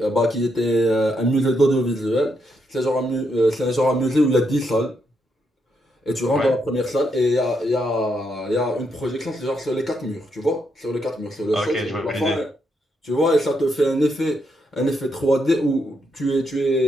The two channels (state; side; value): normal; both; correlation 0.79